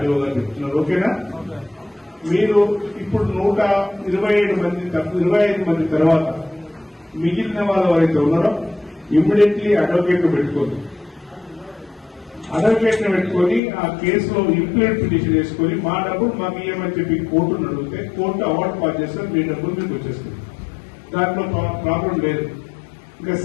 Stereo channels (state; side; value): drops out; right; at 13.6 s